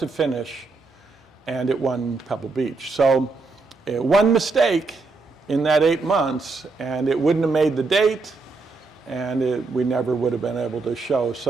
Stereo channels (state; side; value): quieter; left; 3.9 dB